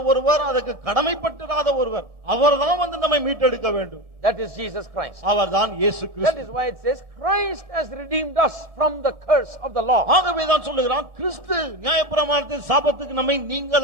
ஒருவர், அதுக்கு கடமைப்பட்டிராத ஒருவர், அவர்தான் வந்து நம்மை மீட்டெடுக்க வேண்டும். That is Jesus Christ. அவர்தான் இயேசு That Kristu. is why it says Christ has redeemed us from the curse of the law. ஆகவேதான் சொல்லுகிறான், கிறிஸ்து நியாயப்பிரமாணத்தின் சாபத்துக்கு நம்மை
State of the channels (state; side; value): late; left; 1.4 ms